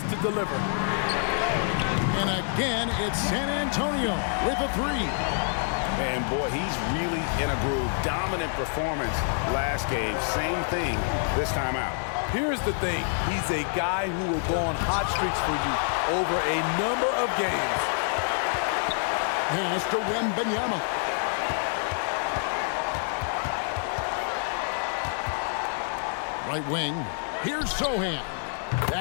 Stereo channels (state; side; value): silent; right; 60 dB below the other